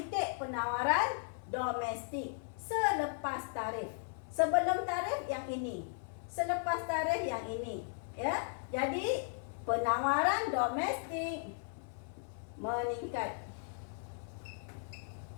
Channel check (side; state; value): right; silent; 53 dB below the other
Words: penawaran domestik selepas tarif. Sebelum tarif yang ini, selepas tarif yang ini. Ya, jadi penawaran domestik meningkat.